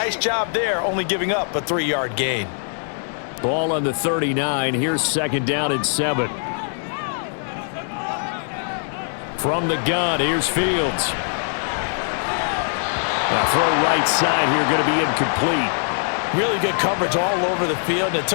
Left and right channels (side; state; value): right; silent; 56 dB below the other